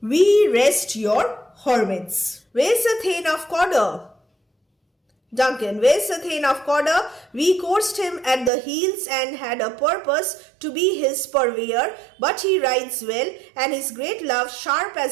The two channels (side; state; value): left; drops out; at 8.5 s